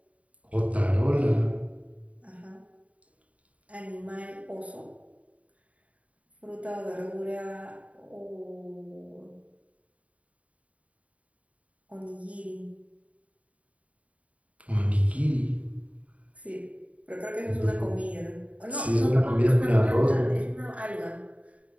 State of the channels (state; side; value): late; left; 0.067 ms